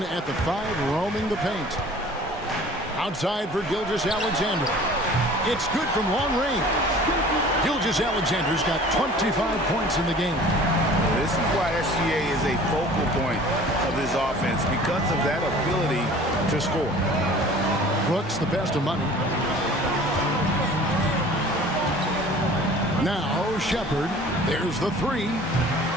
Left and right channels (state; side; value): normal; both; correlation 0.46